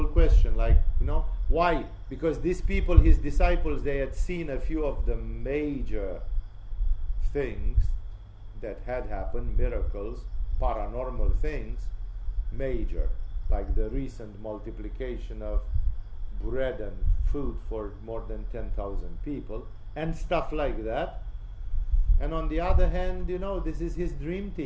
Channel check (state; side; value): identical; both; correlation 1.00